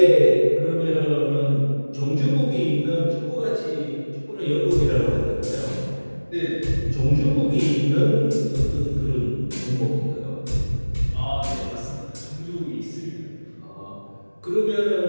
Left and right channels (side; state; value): both; inverted; correlation -1.00